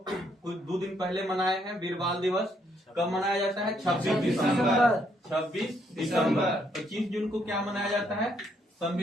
कुछ 2 दिन पहले मनाए हैं। वीर बाल दिवस कब मनाया जाता है? 26 दिसंबर। 26 दिसंबर। 25 जून को क्या मनाया जाता है?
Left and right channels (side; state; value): both; normal; correlation 0.72